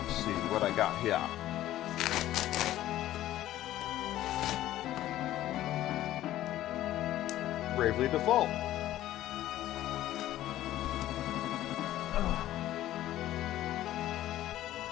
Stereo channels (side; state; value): right; quieter; 13.9 dB